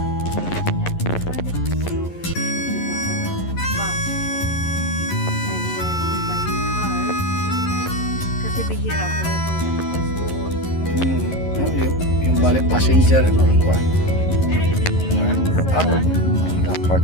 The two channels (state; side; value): late; right; 11 ms